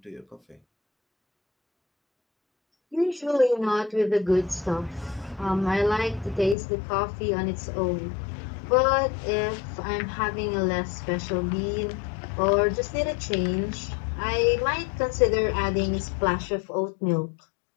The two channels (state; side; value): drops out; right; at 6.6 s